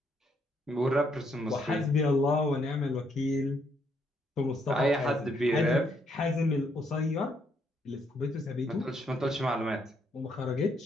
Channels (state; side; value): normal; both; correlation 0.73